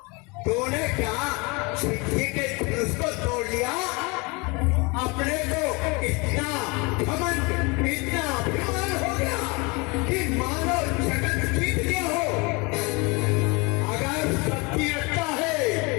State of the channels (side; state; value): right; quieter; 28.0 dB